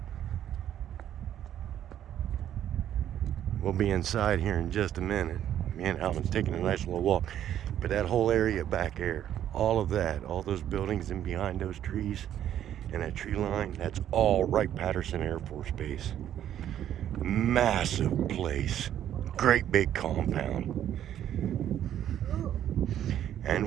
We'll be inside here in just a minute. Me and Alvin's taking a nice little walk. But that whole area back there, all of that, all those buildings and behind those trees and that tree line, that's all Wright-Patterson Air Force Base. Massive place. Great big compound. And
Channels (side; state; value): left; quieter; 10.8 dB